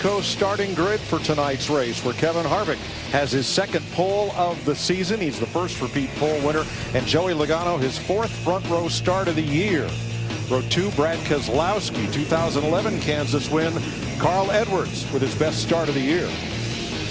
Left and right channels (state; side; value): identical; both; correlation 1.00